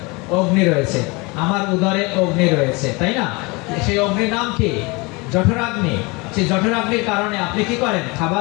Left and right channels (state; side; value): quieter; right; 26.5 dB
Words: অগ্নি রয়েছে। আমার উদরে অগ্নি রয়েছে, তাই না? সেই অগ্নির নাম কি? জঠরাগ্নি। সেই জঠরাগ্নির কারণে আপনি কি করেন?